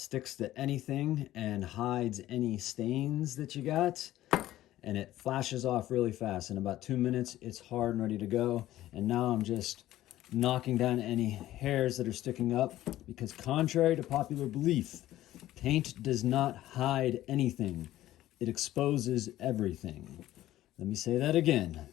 to anything and hides any stains that you got, and it flashes off really fast. In about 2 minutes, it's hard and ready to go. And now I'm just knocking down any hairs that are sticking up, because contrary to popular belief, paint does not hide anything. It exposes everything. Let me say that again.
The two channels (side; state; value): right; quieter; 14.4 dB